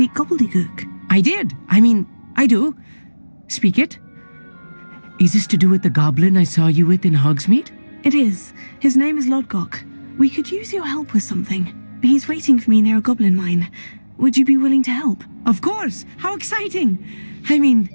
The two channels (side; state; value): both; inverted; correlation -1.00